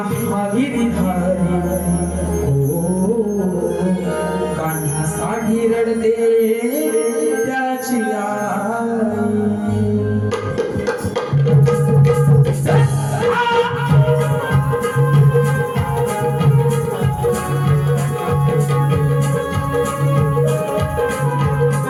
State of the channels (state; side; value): identical; both; correlation 1.00